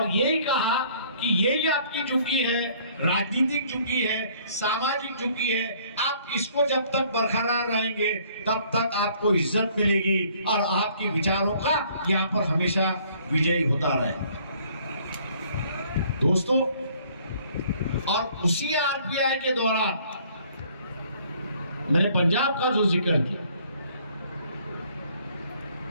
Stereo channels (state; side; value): inverted; both; correlation -0.59